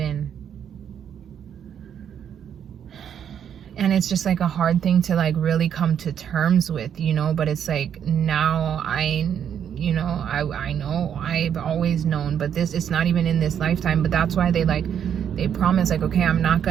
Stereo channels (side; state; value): left; quieter; 8.7 dB